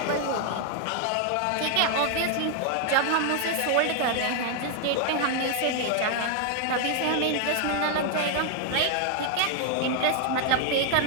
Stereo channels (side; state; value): both; different; correlation 0.00